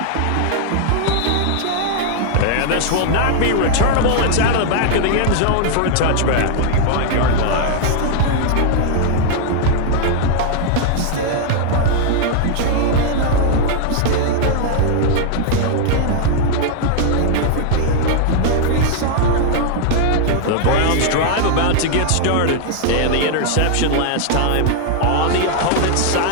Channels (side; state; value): both; different; correlation 0.00